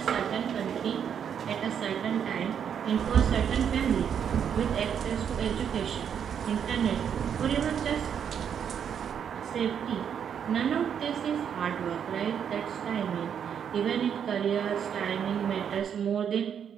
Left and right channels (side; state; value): left; quieter; 8.2 dB